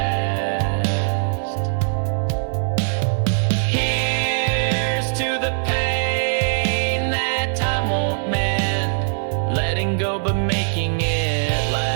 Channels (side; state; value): left; silent; 59 dB below the other